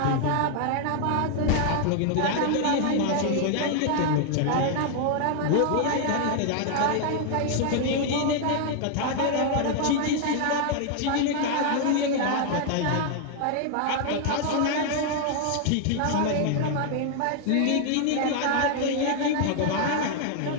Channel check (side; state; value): both; different; correlation 0.00